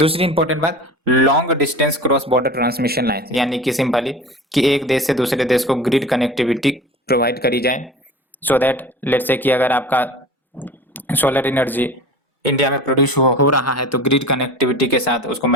इंपॉर्टेंट बात, long distance cross border transmission line, यानी कि सिंपली कि एक देश से दूसरे देश को ग्रिड कनेक्टिविटी प्रोवाइड करी जाए, सो दैट लेट्स से कि अगर आपका सोलर एनर्जी इंडिया में प्रोड्यूस हो रहा है तो ग्रिड कनेक्टिविटी के साथ उसको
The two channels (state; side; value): normal; both; correlation 0.37